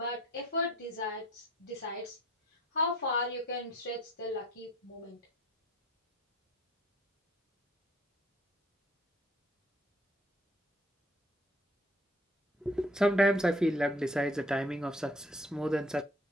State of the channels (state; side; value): normal; both; correlation 0.55